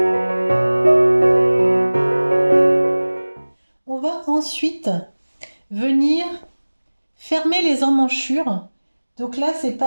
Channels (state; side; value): inverted; both; correlation -1.00